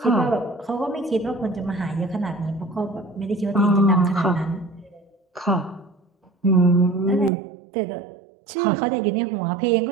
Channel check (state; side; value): drops out; left; at 7.3 s